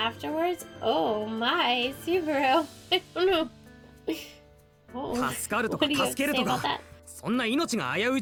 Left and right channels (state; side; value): identical; both; correlation 1.00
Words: Oh my, Subaru! I don't know. Oh, 助かると what か do you have 助け to る say と about か that? そんな命が危うい